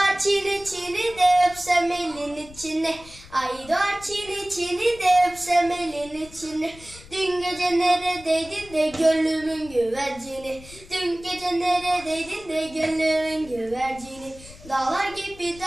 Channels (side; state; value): left; noise; rumble, 19 dB below the sound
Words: çini de öpsem elin içine. Ay doğar çini de öpsem elin içine. Dün gece neredeydin de gönlümün güvercini. Dün gece neredeydin de gönlümün güvercini. Dağlar gibi